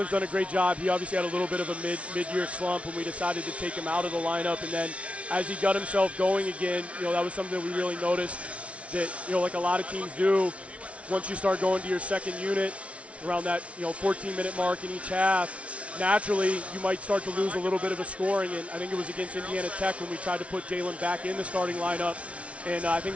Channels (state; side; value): late; left; 0.063 ms